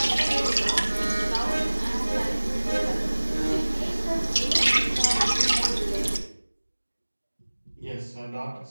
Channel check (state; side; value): inverted; both; correlation -1.00